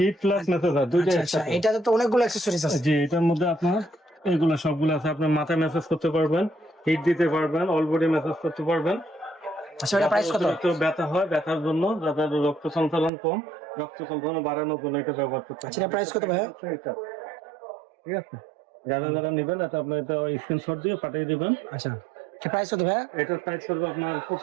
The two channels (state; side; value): drops out; left; at 13.1 s